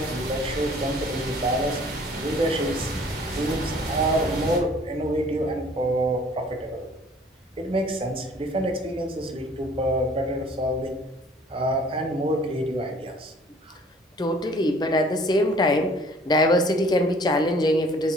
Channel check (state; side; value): normal; both; correlation 0.54